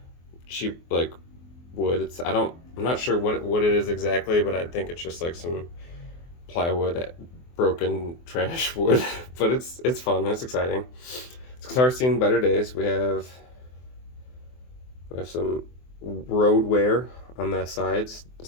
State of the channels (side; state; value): right; late; 24 ms